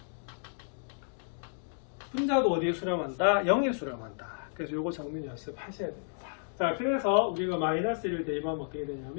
분자도 어디에 수렴한다? 0에 수렴한다. 그래서 요거 적는 연습 하셔야 됩니다. 자, 그래서 우리가 마이너스 1을 대입하면 어떻게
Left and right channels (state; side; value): silent; right; digital silence